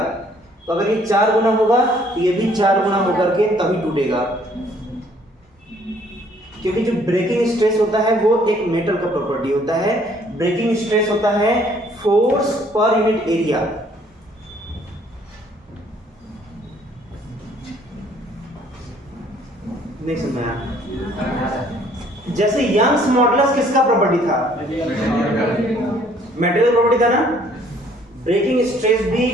तो अगर ये 4 गुना होगा तो ये भी 4 गुना होकर के तभी टूटेगा, क्योंकि जो ब्रेकिंग स्ट्रेस होता है वो एक मेटल का प्रॉपर्टी होता है। ब्रेकिंग स्ट्रेस होता है फोर्स पर यूनिट एरिया। नहीं समझा? जैसे यंग्स मॉडुलस किसका प्रॉपर्टी था? मटेरियल प्रॉपर्टी था ना। ब्रेकिंग स्ट्रेस भी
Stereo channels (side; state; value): both; normal; correlation 0.61